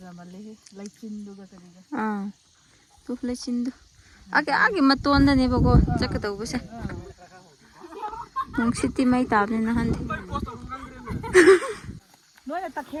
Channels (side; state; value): both; identical; correlation 1.00